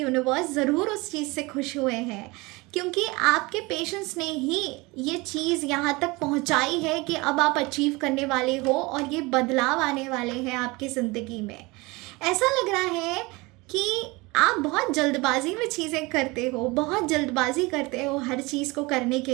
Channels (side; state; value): left; quieter; 24.1 dB